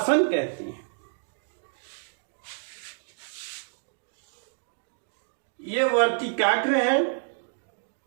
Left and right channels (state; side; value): silent; left; digital silence